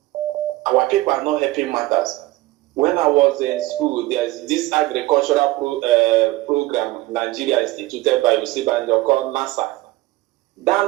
Our people are not helping matters. When I was in school, there's this agricultural program Nigeria instituted by Osibanjo called NASA.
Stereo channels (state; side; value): quieter; left; 18.8 dB